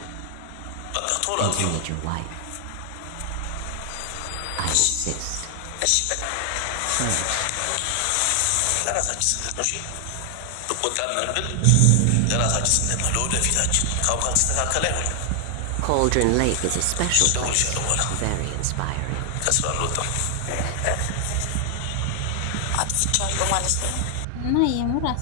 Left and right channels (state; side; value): different; both; correlation 0.00